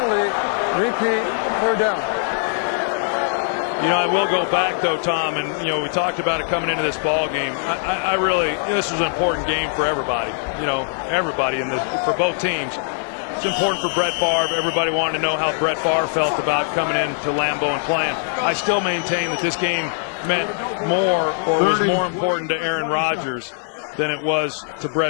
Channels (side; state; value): right; silent; 58 dB below the other